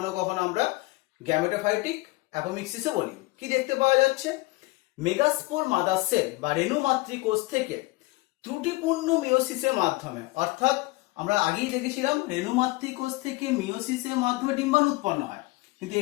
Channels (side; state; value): right; quieter; 22.2 dB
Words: কখনো আমরা গ্যামেটোফাইটিক অ্যাপোমিক্সিসও বলি। কি দেখতে পাওয়া যাচ্ছে, মেগাস্পোর মাদার সেল বা রেণু মাতৃকোষ থেকে ত্রুটিপূর্ণ মিওসিসের মাধ্যমে, অর্থাৎ আমরা আগেই দেখেছিলাম রেণু মাতৃকোষ থেকে মিওসিসের মাধ্যমে ডিম্বাণু উৎপন্ন হয়, কিন্তু